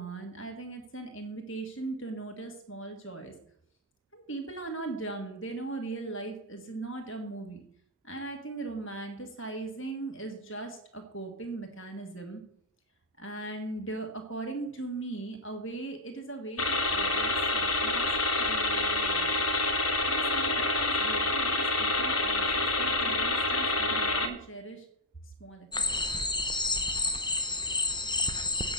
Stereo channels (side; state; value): both; normal; correlation -0.05